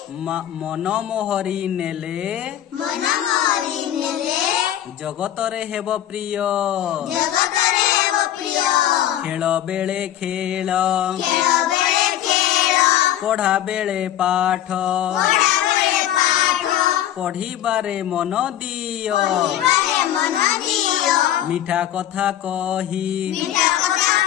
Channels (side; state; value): right; quieter; 11.9 dB